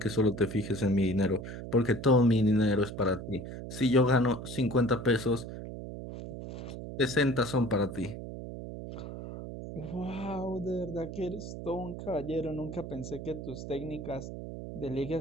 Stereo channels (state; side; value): noise; right; hum, 9 dB below the sound